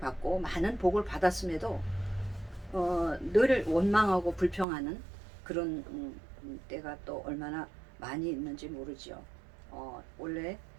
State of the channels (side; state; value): left; drops out; at 4.7 s